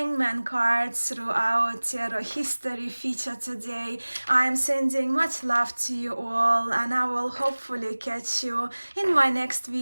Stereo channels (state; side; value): inverted; both; correlation -1.00